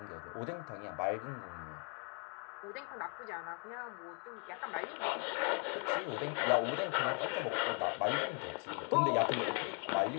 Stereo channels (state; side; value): quieter; right; 36.9 dB